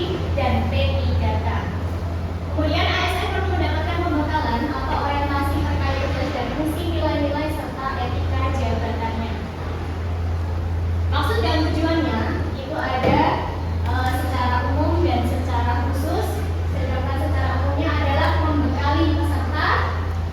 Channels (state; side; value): identical; both; correlation 1.00